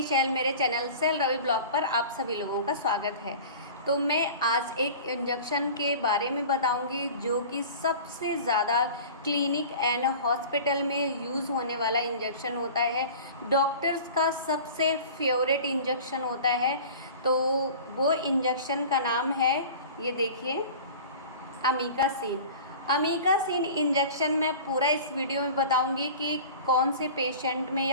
शैल। मेरे चैनल शैल रवि ब्लॉग पर आप सभी लोगों का स्वागत है। तो मैं आज एक इंजेक्शन के बारे में बताऊंगी जो कि सबसे ज़्यादा क्लिनिक एंड हॉस्पिटल में यूज़ होने वाला इंजेक्शन होता है। डॉक्टर्स का सबसे फेवरेट इंजेक्शन होता है। तो वो इंजेक्शन का नाम है, ये देखिए, अमीकासिन। अमीकासिन इंजेक्शन मैं पूरा इस वीडियो में बताऊंगी कि कौन से पेशेंट में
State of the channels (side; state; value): both; inverted; correlation -0.39